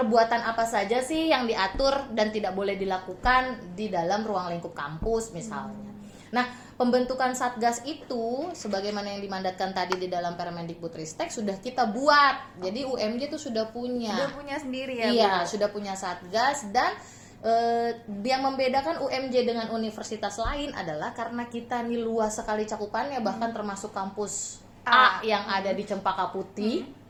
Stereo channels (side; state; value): both; identical; correlation 1.00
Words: apa saja sih yang diatur dan tidak boleh dilakukan di dalam ruang lingkup kampus misalnya. Nah, pembentukan Satgas itu sebagaimana yang dimandatkan tadi di dalam Permendikbudristek sudah kita buat. Jadi UMJ itu sudah punya. Sudah punya sendiri ya. Iya, Bu? sudah punya Satgas, dan yang membedakan UMJ dengan universitas lain adalah karena kita ini luas sekali cakupannya, bahkan termasuk kampus A yang ada di Cempaka Putih.